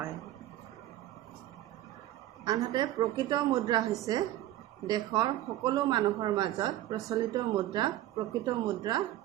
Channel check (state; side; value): quieter; left; 14.2 dB